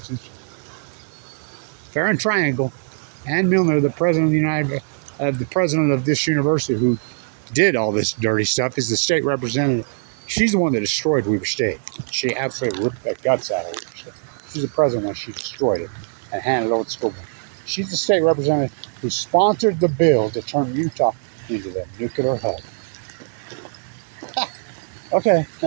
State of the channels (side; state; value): left; silent; digital silence